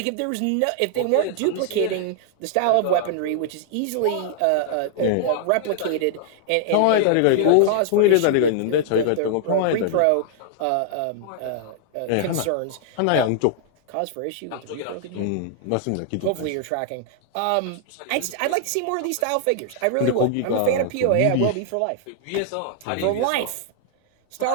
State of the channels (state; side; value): different; both; correlation -0.01